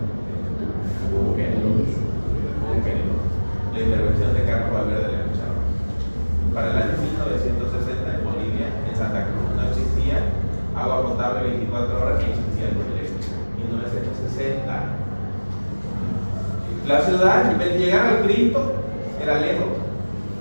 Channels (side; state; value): both; inverted; correlation -1.00